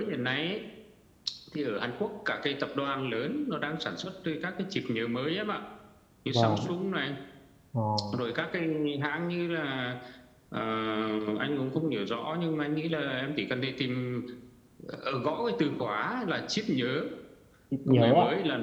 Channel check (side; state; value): both; identical; correlation 1.00